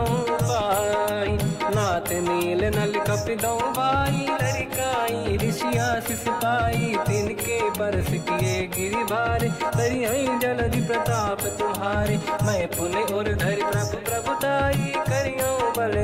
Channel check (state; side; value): identical; both; correlation 1.00